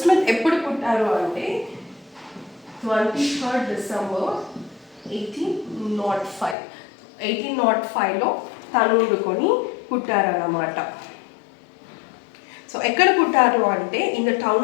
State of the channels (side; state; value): right; drops out; at 6.6 s